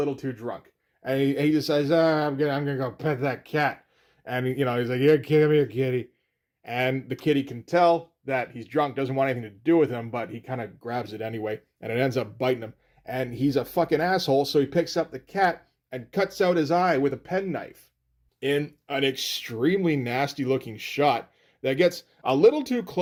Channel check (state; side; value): identical; both; correlation 1.00